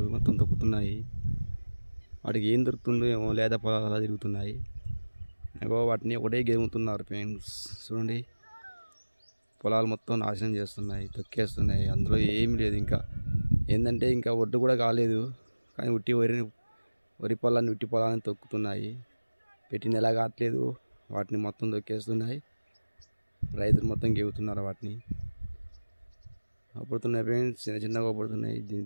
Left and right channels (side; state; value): both; inverted; correlation -1.00